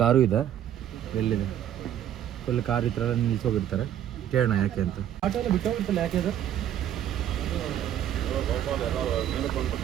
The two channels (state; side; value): quieter; left; 10.7 dB